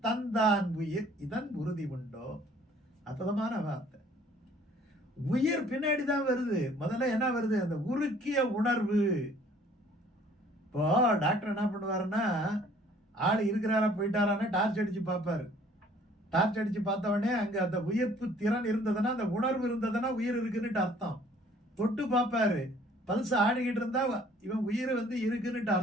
தந்தான் உயிர் இதன் உறுதி உண்டோ. அற்புதமான வார்த்தை. உயிர் பின்னாடிதான் வருது. முதல்ல என்ன வருது? அந்த உருக்கிய உணர்வு. இப்போ டாக்டர் என்ன பண்ணுவாருன்னா, ஆள் இருக்கிறாரா போயிட்டாரான்னு டார்ச் அடிச்சு பார்ப்பாரு. டார்ச் அடிச்சு பார்த்த உடனே அங்க அந்த உயிர்ப்பு திறன் இருந்ததுன்னா, அந்த உணர்வு இருந்ததுன்னா உயிர் இருக்குன்னுட்டு அர்த்தம். தொட்டு பார்ப்பாரு, பல்ஸ் ஆடிக்கிட்டு இருந்தா இவன் உயிர் இருக்குன்னுட்டு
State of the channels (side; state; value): both; normal; correlation 0.56